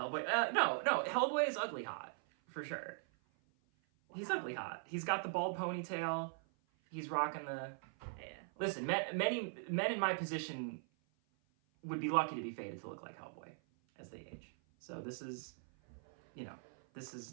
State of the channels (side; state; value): left; silent; 51 dB below the other